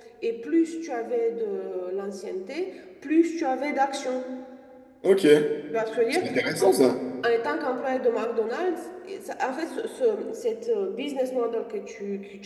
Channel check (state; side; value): identical; both; correlation 1.00